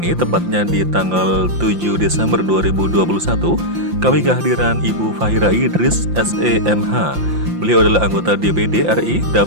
ini tepatnya di tanggal 7 Desember 2021 kami kehadiran Ibu Fahira Idris SEMH. Beliau adalah anggota DPD RI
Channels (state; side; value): late; left; 5.8 ms